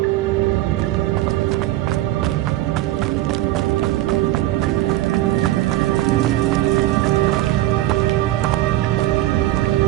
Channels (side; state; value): left; quieter; 15.6 dB